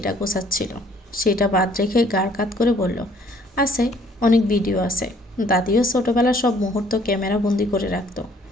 গোছাচ্ছিল। সেটা বাদ রেখে গাড় কাত করে বলল, আছে, অনেক ভিডিও আছে। দাদিও ছোটবেলার সব মুহূর্ত ক্যামেরা বন্দি করে রাখত।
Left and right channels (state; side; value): normal; both; correlation 0.61